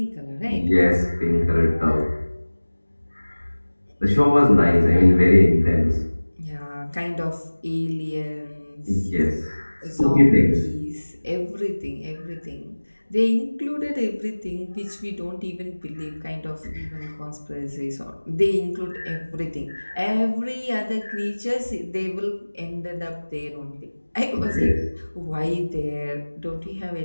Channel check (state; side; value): inverted; both; correlation -1.00